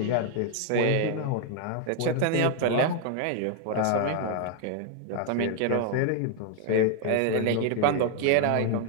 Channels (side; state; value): both; different; correlation 0.00